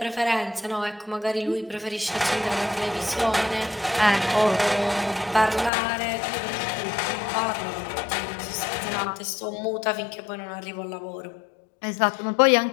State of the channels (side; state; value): right; drops out; at 5.7 s